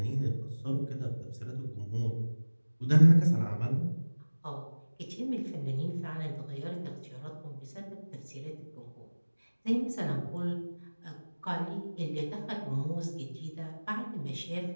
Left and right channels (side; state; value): both; inverted; correlation -1.00